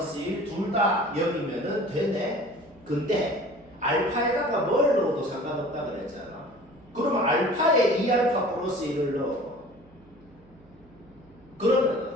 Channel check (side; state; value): right; noise; hum, 27 dB below the sound